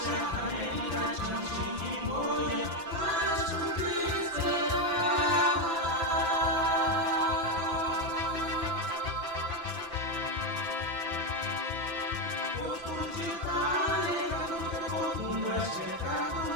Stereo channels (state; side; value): late; left; 5.9 ms